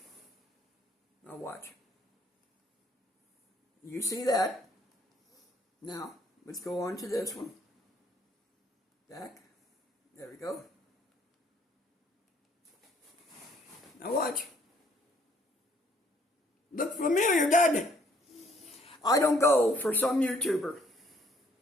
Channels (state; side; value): normal; both; correlation 0.64